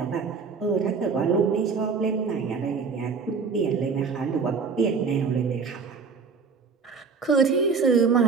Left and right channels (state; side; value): quieter; left; 5.2 dB